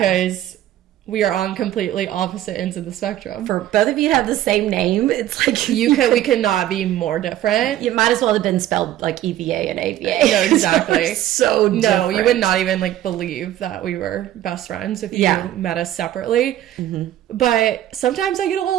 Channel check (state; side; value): quieter; left; 12.9 dB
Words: we are on completely opposite ends of the spectrum. For both of you have the same name. It's like we cannot be more different. You might as well have been spelled like EVA and AVA. No, exactly. So different. No, you would not even like believe that we were best friends if you met us separately. But sometimes I get a